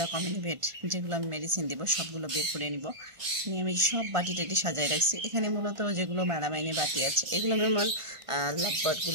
কমিনিভেট, যেগুলো আমি মেডিসিন দিব সবগুলো বের করে নিব। নিয়ে আমি সব বাটি টাটি সাজাই রাখছি। এখানে মূলত যেগুলো মেলামাইনে বাটি আছে এগুলো আমি আমার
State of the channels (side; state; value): left; late; 1.5 ms